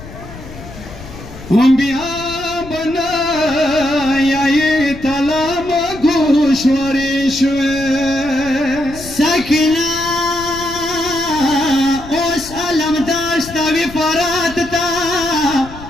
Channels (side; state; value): left; noise; rumble, 15 dB below the sound